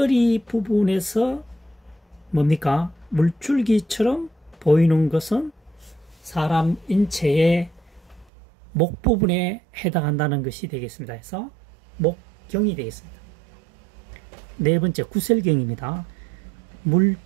부분에서 뭡니까? 물줄기처럼 보이는 것은 사람 인체의 목 부분에 해당한다는 것이 되겠습니다. 그래서 목경이 되겠습니다. 네 번째, 구셀경입니다.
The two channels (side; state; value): left; drops out; at 8.2 s